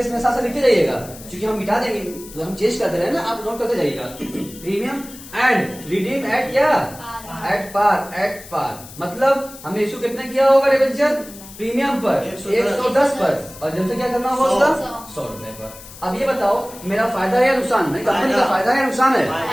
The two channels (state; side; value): noise; left; hiss, 17 dB below the sound